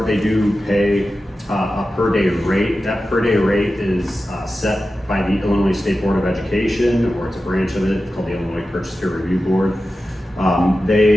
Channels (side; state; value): both; normal; correlation 0.93